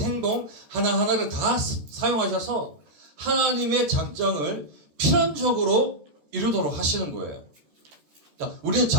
하나하나를 다 사용하셔서 하나님의 작정을 필연적으로 이루도록 하시는 거예요. 자, 우리는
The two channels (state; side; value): late; left; 14 ms